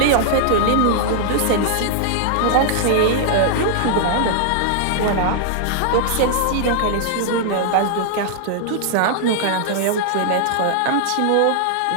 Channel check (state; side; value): different; both; correlation -0.01